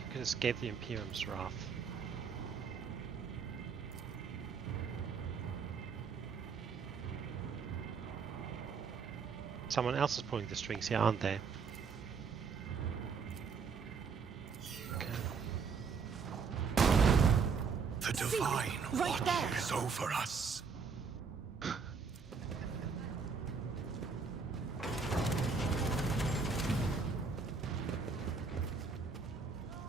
could escape the Imperium's wrath? Someone else is pulling the strings here, aren't they? Okay. The divine right there. watches over us.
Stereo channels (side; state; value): left; quieter; 5.5 dB